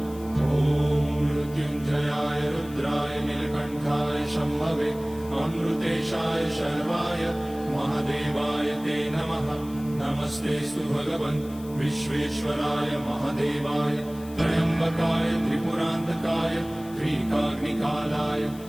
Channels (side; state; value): left; noise; hiss, 21 dB below the sound